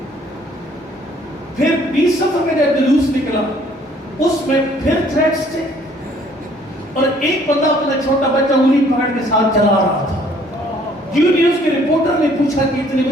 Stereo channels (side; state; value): both; normal; correlation 0.60